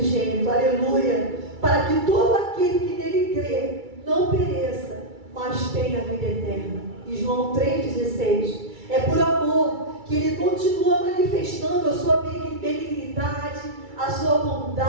aleluia, para que todo aquele que nele crê não pereça, mas tenha a vida eterna. E João 3:16. É por amor que ele continua manifestando a sua benignidade, a sua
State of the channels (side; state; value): left; late; 2.3 ms